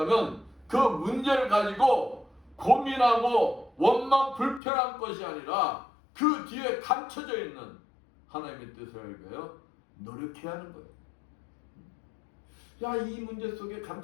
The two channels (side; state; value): right; drops out; at 4.6 s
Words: 그 문제를 가지고 고민하고 원망 불편한 것이 아니라 그 뒤에 감춰져 있는 하나님의 뜻을 알고요, 노력해야 하는 거예요. 야, 이 문제 속에